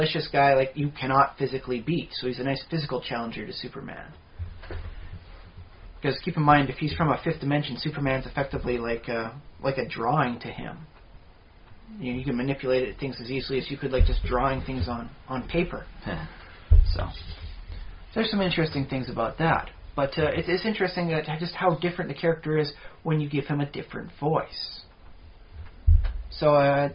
guy like you cannot physically beat. So he's a nice physical challenger to Superman. Because keep in mind, if he's from a fifth dimension, Superman's effectively like a drawing to him. You can manipulate things as easily as you could just drawing things on paper. So there's some interesting things about that. But it is interesting that just how different the character is when you give him a different voice. So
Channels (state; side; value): identical; both; correlation 1.00